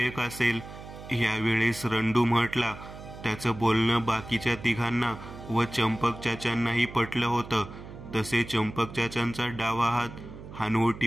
असेल. यावेळेस रंडू म्हटला. त्याचं बोलणं बाकीच्या तिघांना व चंपक चाचांनाही पटलं होतं. तसे चंपक चाचांचा डावा हात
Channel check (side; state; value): right; noise; hum, 14 dB below the sound